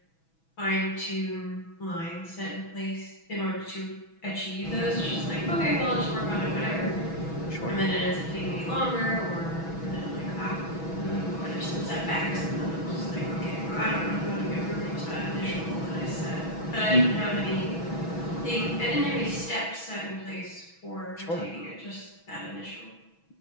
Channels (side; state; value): right; late; 6.1 ms